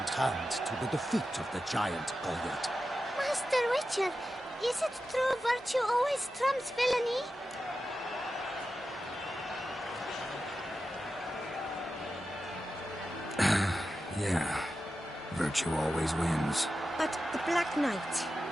hand to the defeat of the giant Goliath. Master Witcher, is it true virtue always trumps villainy? Yeah. Virtue always wins. But the Black Knight,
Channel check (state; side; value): normal; both; correlation 0.91